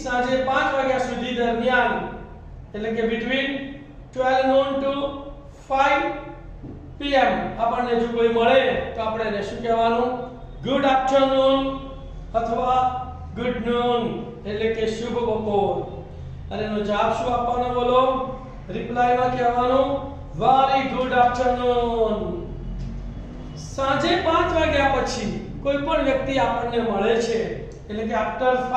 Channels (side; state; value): both; identical; correlation 1.00